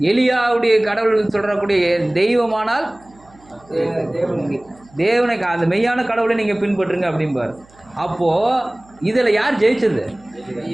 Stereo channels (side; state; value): right; noise; hum, 28 dB below the sound